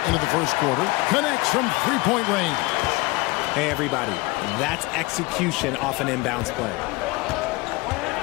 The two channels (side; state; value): right; quieter; 23.5 dB